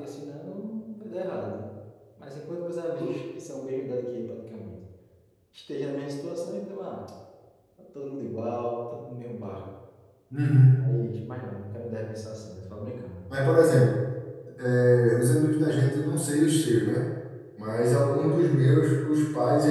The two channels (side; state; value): both; identical; correlation 1.00